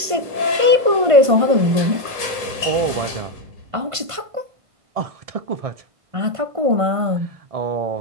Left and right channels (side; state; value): left; late; 1.5 ms